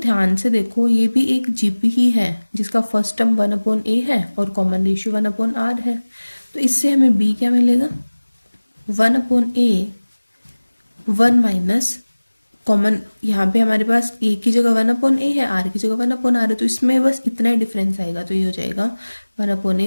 से देखो, ये भी एक जीपी ही है जिसका फर्स्ट टर्म 1/a है और कॉमन रेशियो 1/r है। तो इससे हमें b क्या मिलेगा, 1/a 1 माइनस कॉमन, यहाँ पे हमारे पास a की जगह 1/a है, r की जगह 1/r है, तो इसमें बस इतना ही डिफरेंस आएगा। तो ये हो जाएगा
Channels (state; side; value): inverted; both; correlation -1.00